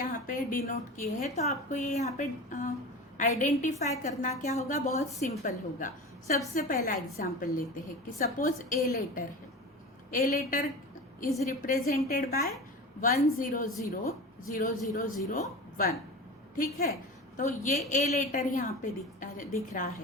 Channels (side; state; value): both; normal; correlation 0.31